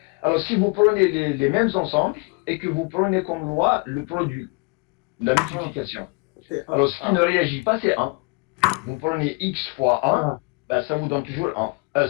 Alors si vous prenez les mêmes ensembles, et que vous prenez comme loi le produit, la multiplication. Alors, ce qui ne réagit pas, c'est 1. Vous prenez x fois 1, ben, ça vous donne toujours 1.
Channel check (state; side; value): quieter; right; 31.3 dB